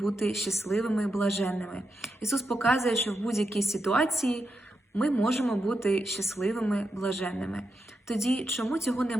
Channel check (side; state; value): both; normal; correlation 0.86